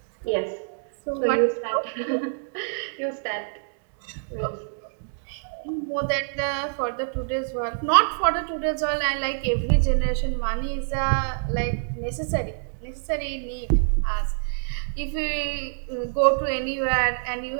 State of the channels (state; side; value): silent; left; digital silence